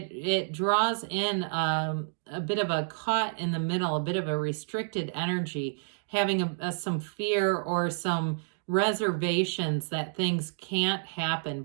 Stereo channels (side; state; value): left; silent; digital silence